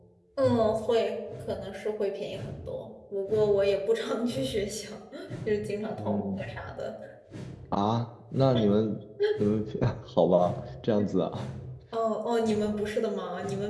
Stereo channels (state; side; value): identical; both; correlation 1.00